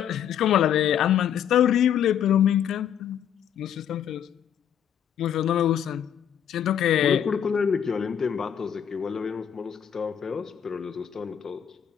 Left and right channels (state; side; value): quieter; right; 9.2 dB